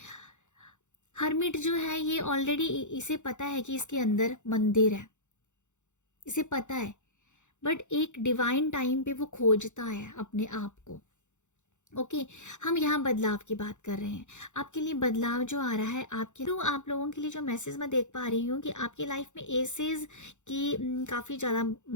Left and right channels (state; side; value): late; right; 0.84 ms